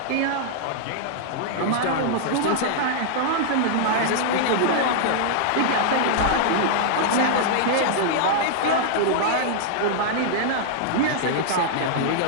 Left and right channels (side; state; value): both; different; correlation -0.01